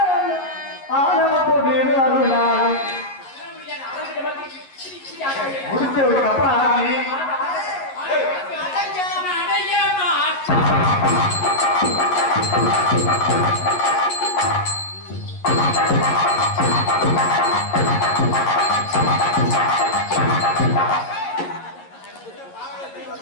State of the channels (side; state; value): right; late; 11 ms